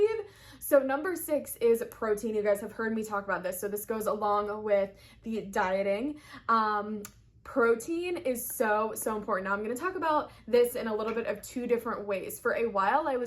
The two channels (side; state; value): both; identical; correlation 1.00